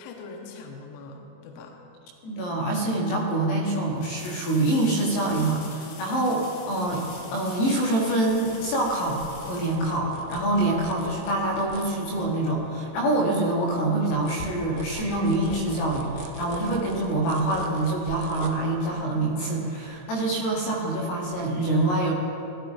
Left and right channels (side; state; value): right; late; 22 ms